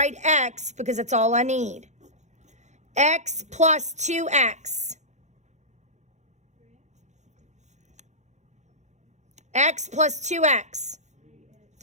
x because that's all I need. X plus 2x. X plus 2x.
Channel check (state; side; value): late; left; 0.34 ms